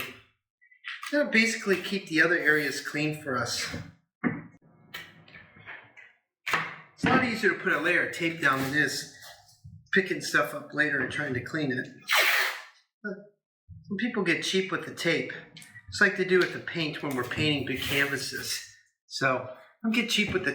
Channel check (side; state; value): both; identical; correlation 1.00